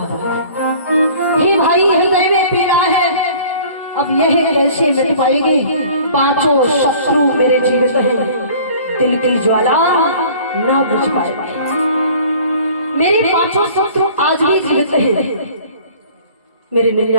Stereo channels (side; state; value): both; inverted; correlation -0.49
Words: है। हे भाई, हृदय में पीड़ा है, अब यह कैसे मिट पाएगी? 5 शत्रु मेरे जीवित हैं, दिल की ज्वाला ना बुझ पाएगी। मेरे 5 शत्रु आज भी जीवित हैं, मेरे